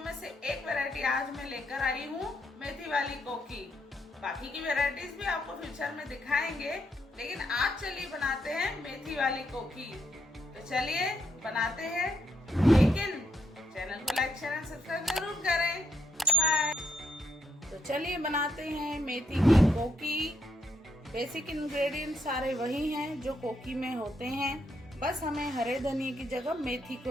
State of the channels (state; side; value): normal; both; correlation 0.75